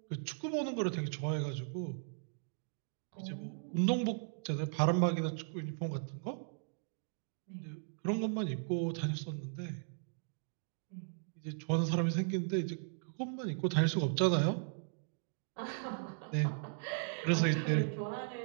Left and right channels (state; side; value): silent; left; digital silence